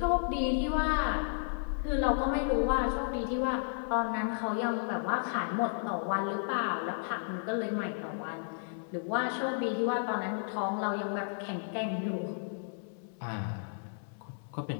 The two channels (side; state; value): right; silent; 55 dB below the other